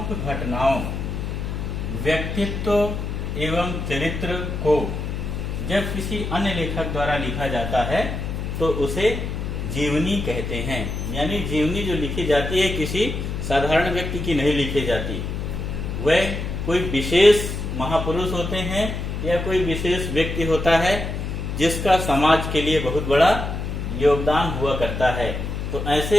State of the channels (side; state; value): left; noise; hum, 4 dB below the sound